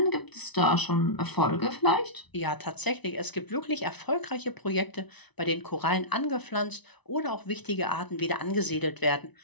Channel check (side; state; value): right; late; 1.0 ms